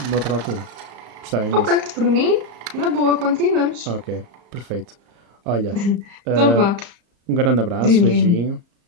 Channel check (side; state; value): left; late; 34 ms